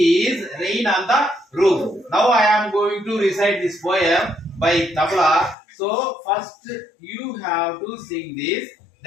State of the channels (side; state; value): right; drops out; at 5.6 s